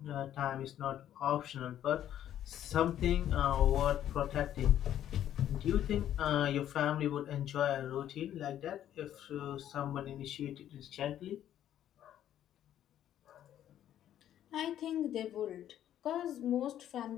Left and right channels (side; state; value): right; quieter; 11.2 dB